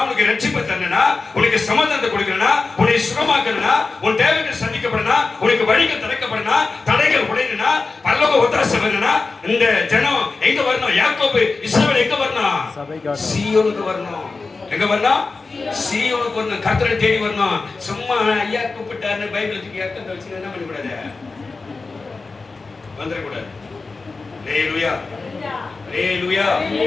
உனக்கு ரட்சிப்பை தரணும்னா, உனக்கு சமாதானத்தை கொடுக்கணும்னா, உன்னை சுகமாக்கணும்னா, உன் தேவைகள் சந்திக்கப்படணும்னா, உனக்கு வழிகள் திறக்கப்படணும்னா, தடைகள் உடையணும்னா, பரலோக ஒத்தாசை வரணும்னா, இந்த ஜனம் எங்க வரணும்? யாக்கோபு இஸ்ரவேல் எங்க வரணும்? சீயோனுக்கு வரணும். எங்க வரணும்? சீயோனுக்கு வரணும். கர்த்தரை தேடி வரணும். சும்மா ஐயா கூப்பிட்டாருன்னு பைபிள் தூக்கி அர்த்தம் வச்சு என்ன பண்ணக்கூடாது, வந்துடக்கூடாது. அல்லேலூயா, அல்லேலூயா.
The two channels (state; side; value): quieter; right; 4.0 dB